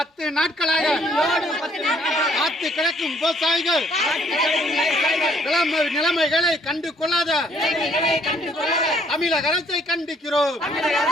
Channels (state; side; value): normal; both; correlation 0.63